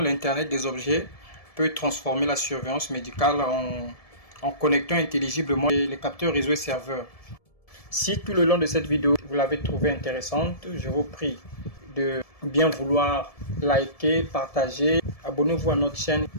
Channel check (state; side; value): late; right; 1.7 ms